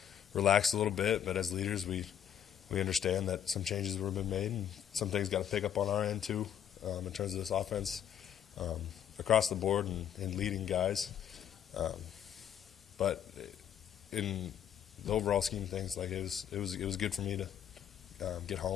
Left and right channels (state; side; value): quieter; right; 9.4 dB